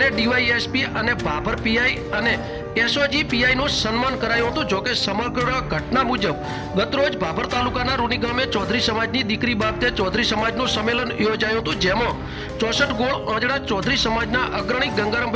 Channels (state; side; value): identical; both; correlation 1.00